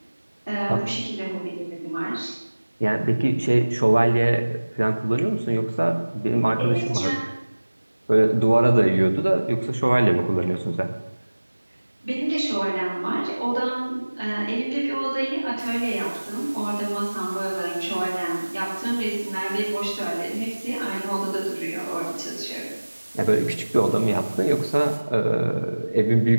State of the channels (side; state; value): both; inverted; correlation -1.00